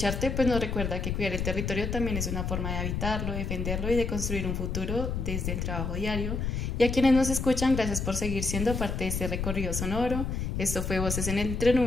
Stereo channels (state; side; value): noise; left; rumble, 2 dB below the sound